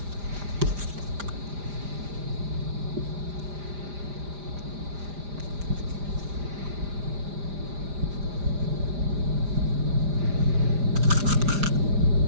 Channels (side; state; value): left; late; 5.0 ms